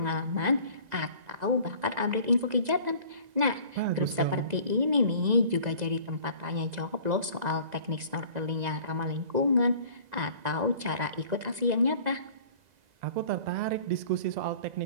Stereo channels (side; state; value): left; late; 2.0 ms